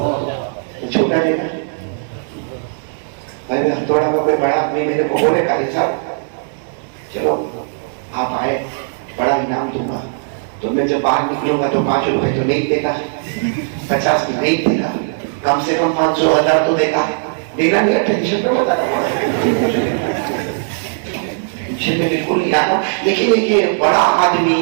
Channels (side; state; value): left; silent; digital silence